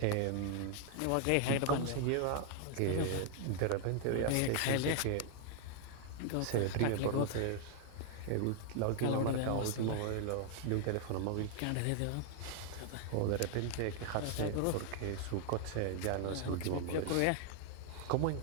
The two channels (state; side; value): different; both; correlation 0.00